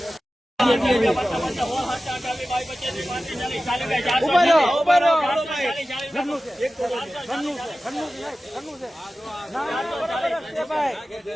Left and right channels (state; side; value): normal; both; correlation 0.95